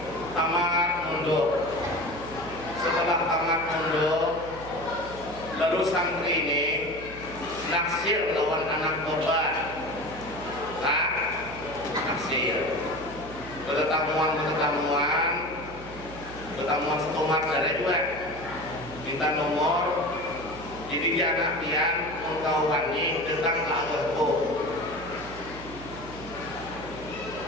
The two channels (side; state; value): right; noise; hum, 14 dB below the sound